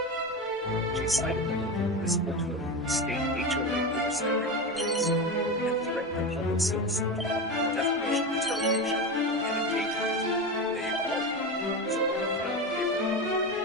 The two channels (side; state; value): both; normal; correlation 0.20